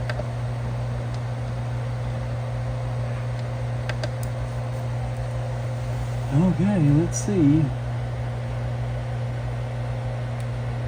Okay, let's see.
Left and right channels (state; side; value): identical; both; correlation 1.00